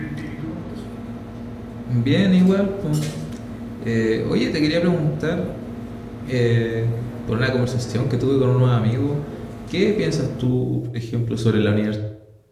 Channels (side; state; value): both; identical; correlation 1.00